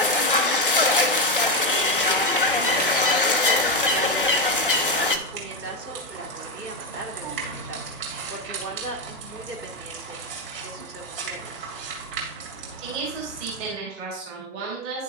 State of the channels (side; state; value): both; normal; correlation 0.10